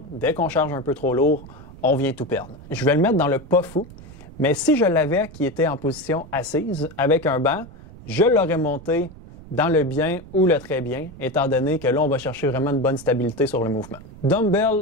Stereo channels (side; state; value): right; noise; rumble, 18 dB below the sound